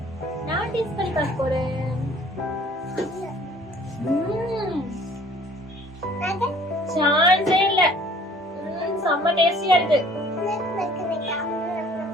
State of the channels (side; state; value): both; normal; correlation 0.54